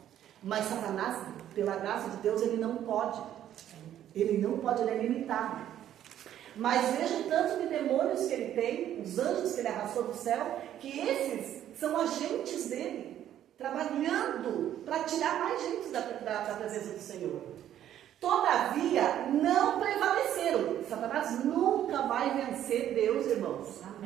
Mas Satanás, pela graça de Deus, ele não pode. Ele não pode, ele é limitado. Mas veja o tanto de demônios que ele tem, os anjos que ele arrastou do céu, que esses são agentes dele, trabalhando para tirar mais gente da presença do Senhor. Todavia, não prevaleceram. Satanás nunca vai vencer Deus, irmãos.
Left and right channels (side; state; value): left; quieter; 11.2 dB